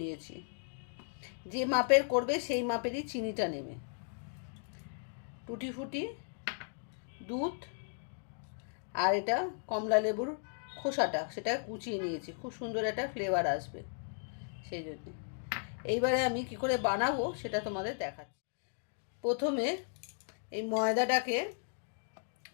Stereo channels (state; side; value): silent; right; digital silence